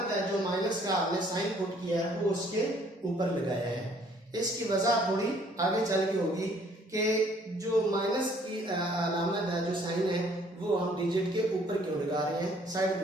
है, जो माइनस का आपने साइन पुट किया है वो उसके ऊपर लगाया है। इसकी वजह थोड़ी आगे चल के होगी कि जो माइनस की अलामत है, जो साइन है, वो हम डिजिट के ऊपर क्यों लगा रहे हैं, साइड पे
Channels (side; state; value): both; normal; correlation 0.61